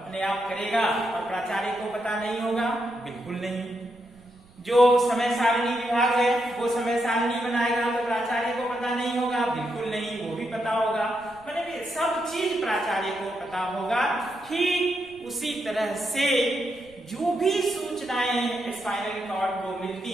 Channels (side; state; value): right; noise; rumble, 27 dB below the sound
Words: आप करेगा और प्राचार्य को पता नहीं होगा? बिल्कुल नहीं। जो समय सारणी विभाग है वो समय सारणी बनाएगा तो प्राचार्य को पता नहीं होगा? बिल्कुल नहीं, वो भी पता होगा। मतलब सब चीज प्राचार्य को पता होगा। ठीक उसी तरह से जो भी सूचनाएं स्पाइनल कॉर्ड को मिलती